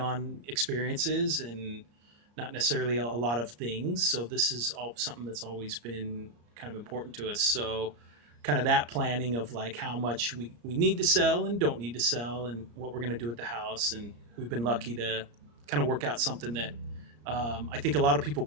experiences and not necessarily a lot of things. So this is all something that's always been kind of important to us. So kind of that planning of like how much we need to sell and don't need to sell and what we're going to do at the house. And we've been lucky to kind of work out something that I think a lot of people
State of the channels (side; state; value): left; late; 34 ms